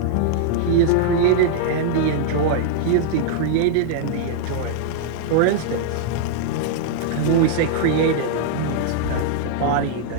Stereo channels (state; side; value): different; both; correlation -0.01